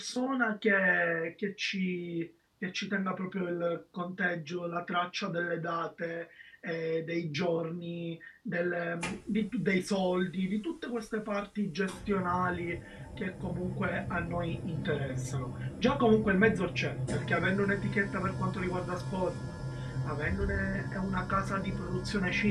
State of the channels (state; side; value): identical; both; correlation 1.00